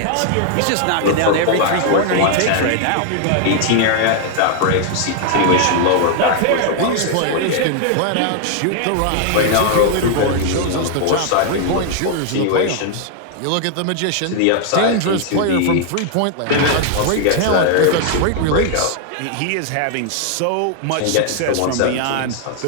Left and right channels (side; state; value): both; different; correlation 0.00